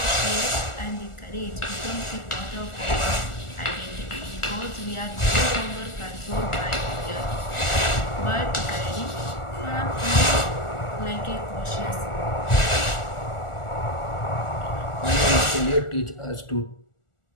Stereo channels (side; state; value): right; late; 1.4 ms